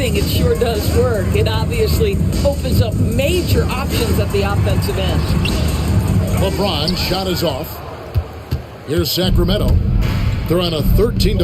it sure does work. It obviously opens up major options at the offensive end. LeBron shot is off. Here's Sacramento. They're on a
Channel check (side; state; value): both; identical; correlation 1.00